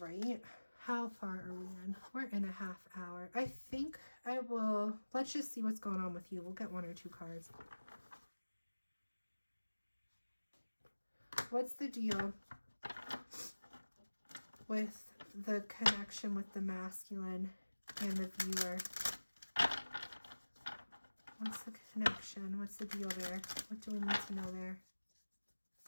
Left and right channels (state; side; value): inverted; both; correlation -1.00